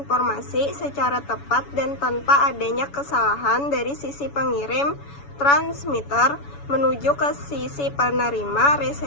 secara tepat dan tanpa adanya kesalahan dari sisi pengirim, transmitter, menuju ke sisi penerima,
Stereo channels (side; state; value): right; late; 7.1 ms